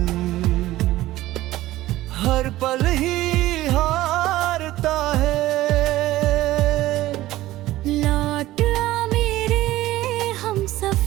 हर पल ही हारता है। लौट आ मेरे हम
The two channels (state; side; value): quieter; left; 16.1 dB